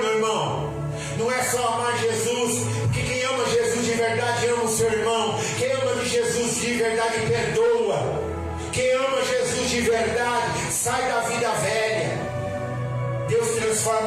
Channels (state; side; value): identical; both; correlation 1.00